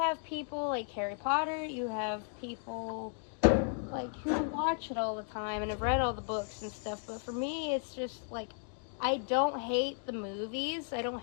people like Harry Potter, you have people... like, who watch it all the time and have read all the books and stuff, but for me, it's just, like, I don't hate the movies, I don't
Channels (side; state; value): right; silent; 55 dB below the other